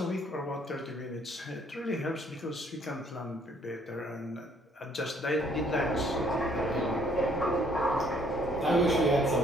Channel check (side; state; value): both; normal; correlation 0.63